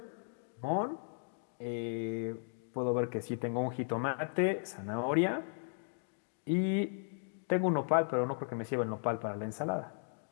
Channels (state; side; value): silent; right; digital silence